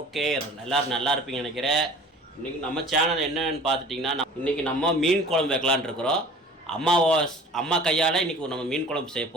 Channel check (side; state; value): both; normal; correlation 0.45